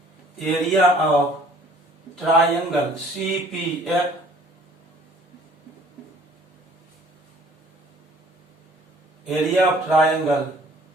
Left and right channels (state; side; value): normal; both; correlation 0.55